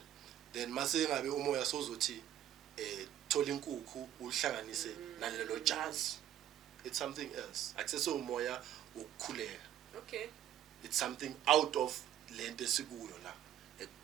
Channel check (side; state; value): left; quieter; 11.4 dB